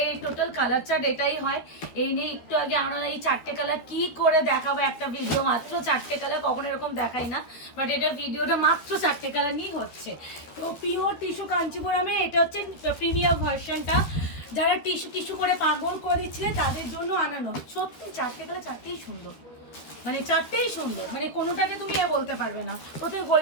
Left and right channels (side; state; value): right; late; 12 ms